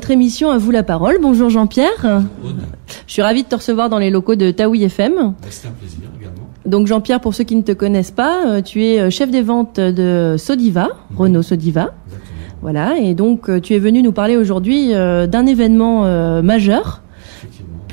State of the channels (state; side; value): silent; left; 72 dB below the other